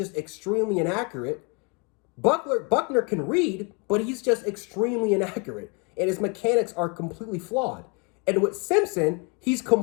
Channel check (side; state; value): right; quieter; 32.0 dB